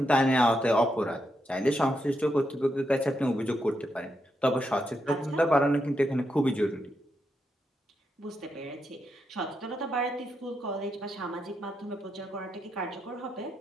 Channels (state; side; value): normal; both; correlation 0.83